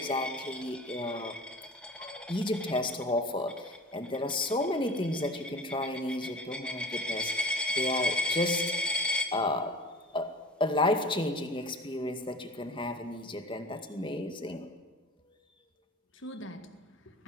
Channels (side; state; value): both; normal; correlation 0.38